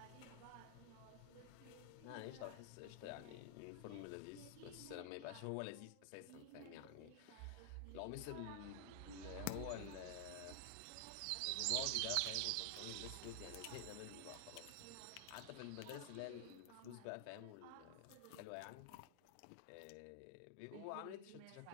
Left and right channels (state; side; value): different; both; correlation 0.00